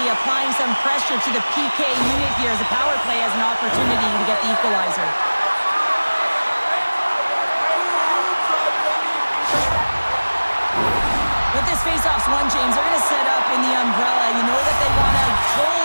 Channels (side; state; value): both; inverted; correlation -1.00